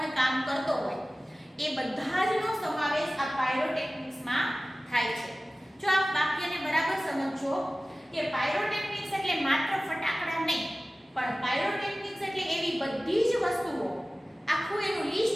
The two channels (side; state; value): both; normal; correlation 0.97